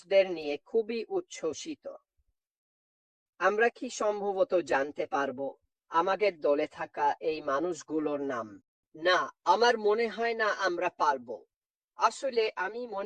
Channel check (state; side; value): identical; both; correlation 1.00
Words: নিয়ে খুবই উচ্ছ্বসিত। আমরা কি সম্ভবত জানতে পারবো আমাদের দলে থাকা এই মানুষগুলোর নাম? না, আমার মনে হয় না আমরা পারবো। আসলে আমি